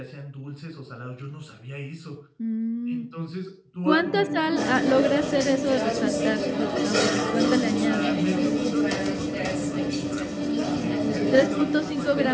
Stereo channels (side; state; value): both; identical; correlation 1.00